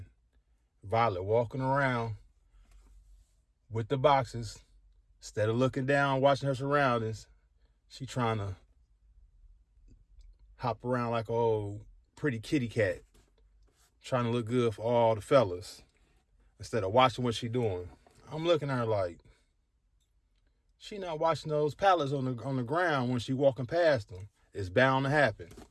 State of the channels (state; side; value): identical; both; correlation 1.00